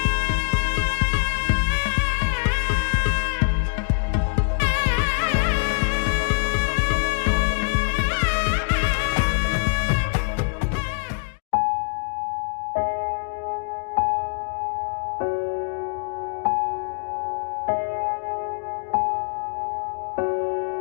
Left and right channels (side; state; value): right; silent; digital silence